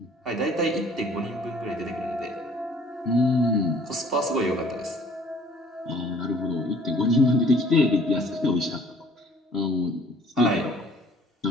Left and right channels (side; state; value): both; normal; correlation 0.55